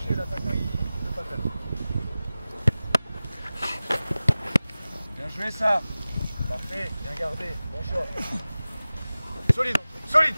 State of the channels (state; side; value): inverted; both; correlation -0.97